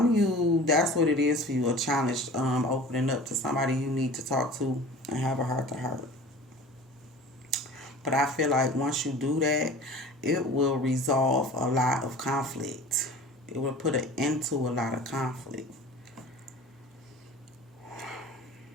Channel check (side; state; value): both; normal; correlation 0.41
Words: of you, that's what it is for you, a challenge, opening up to somebody you need to talk to and have a heart-to-heart. But I feel like once you do that, it will resolve a lot of conflict. It will put an end to a lot of conflict.